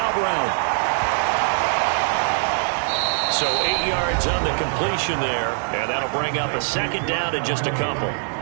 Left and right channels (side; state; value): left; silent; 64 dB below the other